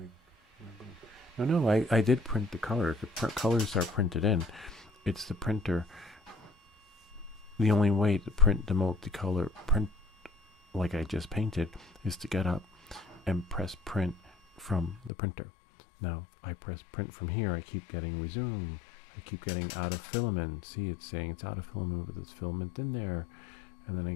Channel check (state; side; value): drops out; right; at 15.1 s